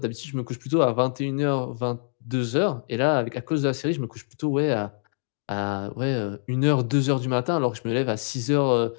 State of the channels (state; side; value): silent; right; digital silence